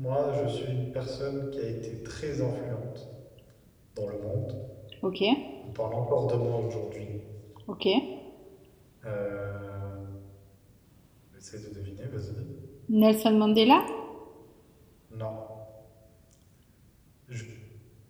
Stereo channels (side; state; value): both; identical; correlation 1.00